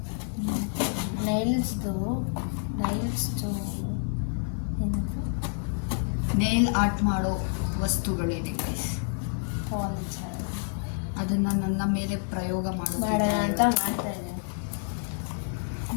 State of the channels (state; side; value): silent; right; 59 dB below the other